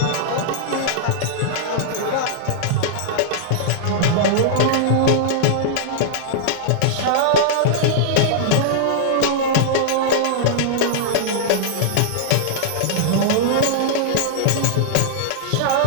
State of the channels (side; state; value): both; different; correlation -0.02